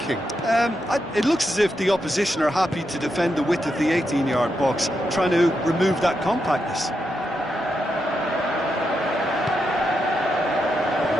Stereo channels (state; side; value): normal; both; correlation 0.84